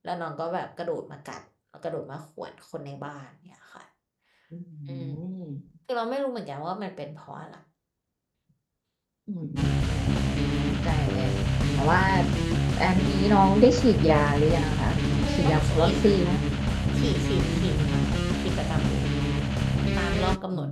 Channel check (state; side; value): identical; both; correlation 1.00